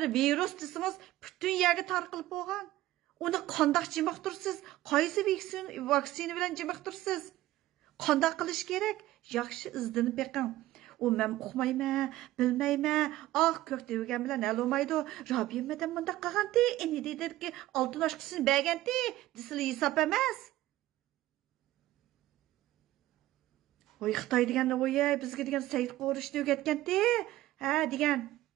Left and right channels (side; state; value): left; quieter; 15.8 dB